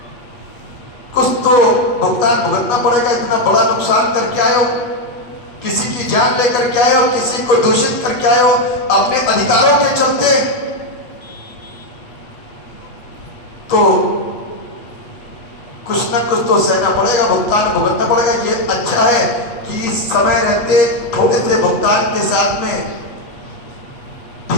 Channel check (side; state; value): right; late; 8.3 ms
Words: कुछ तो भुगतान भुगतना पड़ेगा। इतना बड़ा नुकसान करके आए हो, किसी की जान लेकर के आए हो, किसी को दूषित करके आए हो अपने अधिकारों के चलते, तो कुछ ना कुछ तो सहना पड़ेगा, भुगतान भुगतना पड़ेगा। ये अच्छा है कि समय रहते थोड़े से भुगतान के साथ में